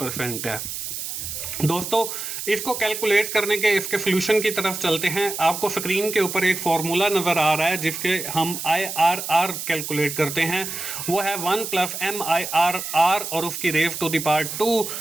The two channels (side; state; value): right; noise; hiss, 6 dB below the sound